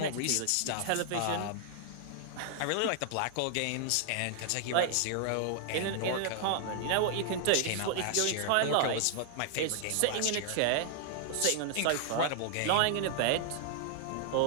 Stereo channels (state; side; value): different; both; correlation 0.00